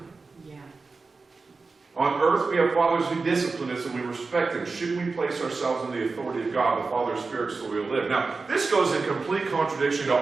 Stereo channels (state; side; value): quieter; left; 4.1 dB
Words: Yeah. On earth, we have fathers who discipline us and we respect them. Shouldn't we place ourselves in the authority of God, the Father's Spirit, so we'll live? Now, this goes in complete contradiction to